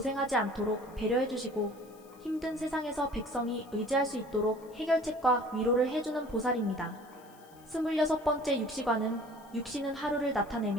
않도록 배려해주시고 힘든 세상에서 백성이 의지할 수 있도록 해결책과 위로를 해주는 보살입니다. 26번째 육시관은 육시는 하루를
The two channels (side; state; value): left; noise; hiss, 27 dB below the sound